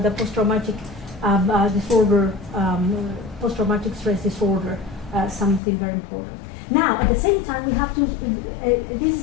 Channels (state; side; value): drops out; right; at 5.6 s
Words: post-traumatic disorder, post-traumatic stress disorder, something very important. Now, at the same time, we have to.